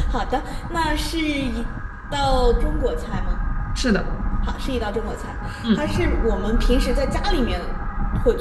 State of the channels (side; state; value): both; identical; correlation 1.00